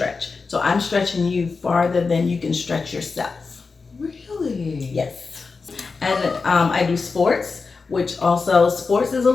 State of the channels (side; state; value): right; quieter; 4.5 dB